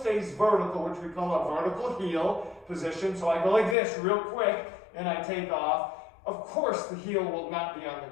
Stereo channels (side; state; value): right; drops out; at 3.8 s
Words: vertical, which we call a vertical heel position, so I go like this real quick and I take off, of course the heel will not be on the